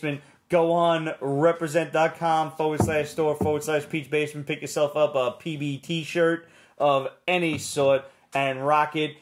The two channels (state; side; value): identical; both; correlation 1.00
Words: Go on represent.com/store/Pete'sBasement. Pick yourself up a PB t-shirt of any sort and rock it